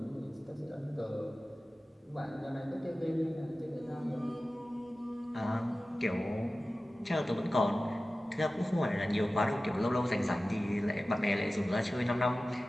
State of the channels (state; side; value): normal; both; correlation 0.96